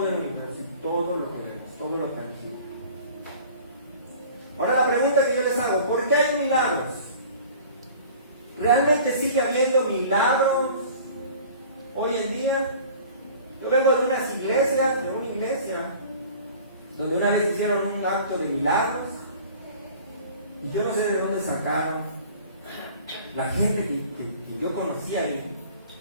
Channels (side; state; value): both; inverted; correlation -0.45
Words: el universo y todo lo que vemos, todo lo tangible. Ahora la pregunta que yo les hago, ¿por qué hay milagros? ¿Realmente sigue habiendo milagros hoy en día? Yo vengo de una iglesia, donde una vez hicieron un acto de milagros, y yo no sé de dónde sacaron la gente que yo conocía ahí,